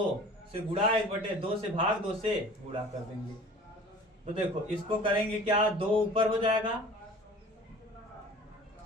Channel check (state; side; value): normal; both; correlation 0.44